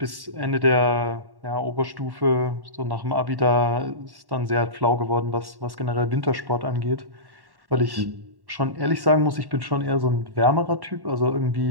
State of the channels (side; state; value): left; late; 1.1 ms